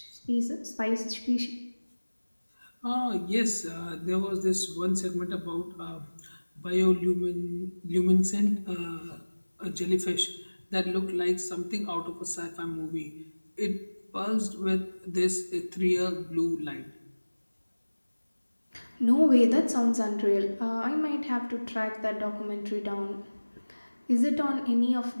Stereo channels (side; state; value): both; inverted; correlation -1.00